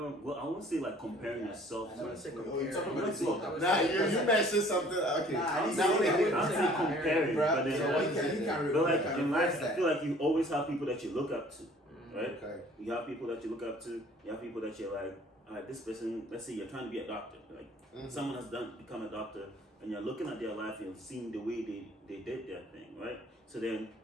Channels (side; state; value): both; normal; correlation 0.53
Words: Well, I won't say like comparing yourself. I wouldn't say Oh, compare. you're talking about I would say- smoke. I would Nah, say- you mentioned something. Okay, Nah, I didn't now say that. I'm saying comparing, but then So what he can but like can in reverse life, I that. feel like you always have people that you look up to, right? Okay. You have people that you look up to. You have people that you're like, all right, this person. Let's say you're trying to be a doctor. Like someone has become a doctor, and you're looking at their life, you're seeing the way they did their thing, right? So then